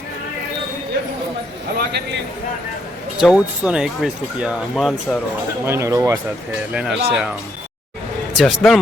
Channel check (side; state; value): both; normal; correlation 0.73